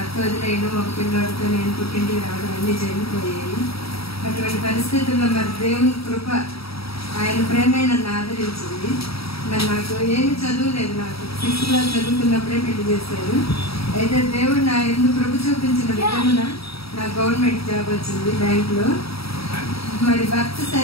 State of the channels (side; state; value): right; late; 0.76 ms